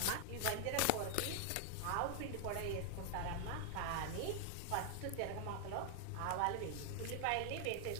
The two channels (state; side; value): different; both; correlation 0.00